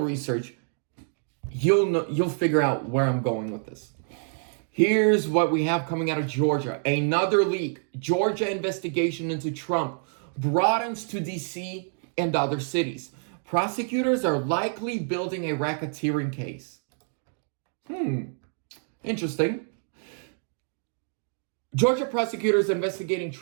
research. You'll figure out where I'm going with this. Here's what we have coming out of Georgia. Another leak. Georgia investigation into Trump broadens to D.C. and other cities. Prosecutors are likely building a racketeering case. Interesting. Georgia prosecutors investigating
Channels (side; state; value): left; silent; 60 dB below the other